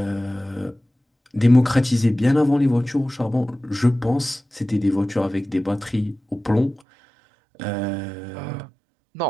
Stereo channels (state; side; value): drops out; left; at 6.8 s